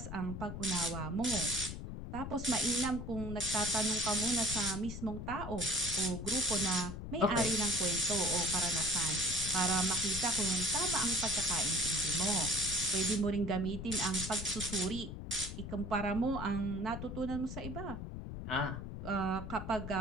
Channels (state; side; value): noise; left; rumble, 7 dB below the sound